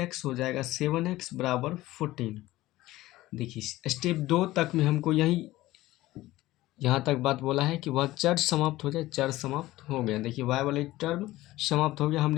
हो जाएगा 7x = 14। देखिए स्टेप 2 तक में हमको यहाँ तक बात बोला है कि वह चर समाप्त हो जाए। चर समाप्त हो गया। देखिए y वाले टर्म समाप्त हो गया,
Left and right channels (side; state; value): right; quieter; 17.1 dB